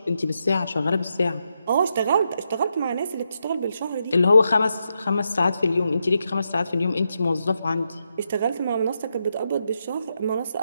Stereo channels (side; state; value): both; inverted; correlation -0.83